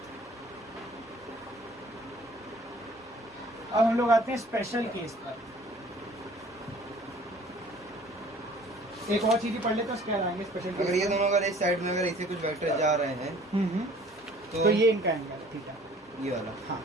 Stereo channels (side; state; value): both; normal; correlation 0.52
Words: अब हम लोग आते हैं स्पेशल केस पर। एक और चीज पढ़ लेते हैं, उसके बाद आएंगे स्पेशल केस। अगर ये दोनों अगर इस साइड में अगर ऐसे कुछ वेक्टर जा रहे हैं तो ये इनका एंगल है, ठीक है? ये वाला। हाँ,